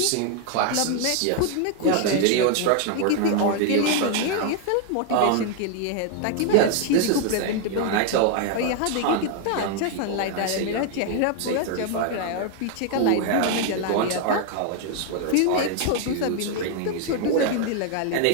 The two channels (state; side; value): different; both; correlation 0.00